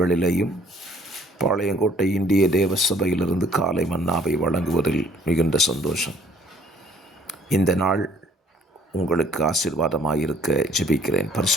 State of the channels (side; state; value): both; normal; correlation 0.59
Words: பாளையங்கோட்டை இந்திய தேவ சபையிலிருந்து காலை மன்னாவை வழங்குவதில் மிகுந்த சந்தோஷம். இந்த நாள் உங்களுக்கு ஆசீர்வாதமாயிருக்க ஜெபிக்கிறேன்.